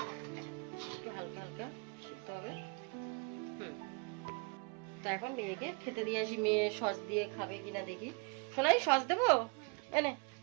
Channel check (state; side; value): quieter; left; 33.4 dB